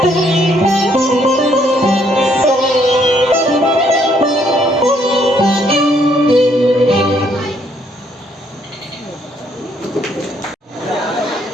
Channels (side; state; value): both; normal; correlation 0.69